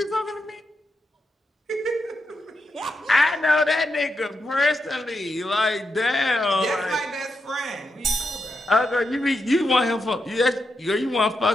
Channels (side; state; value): both; normal; correlation 0.85